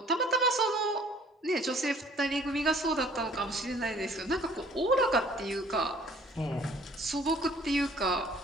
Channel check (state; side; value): normal; both; correlation 0.55